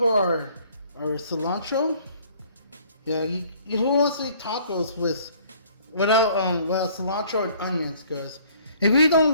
our cilantro. Yeah, who wants to eat tacos without cilantro and onions? Because if you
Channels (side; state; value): both; inverted; correlation -0.57